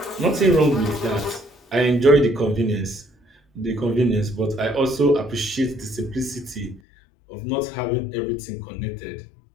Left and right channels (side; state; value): right; drops out; at 6.8 s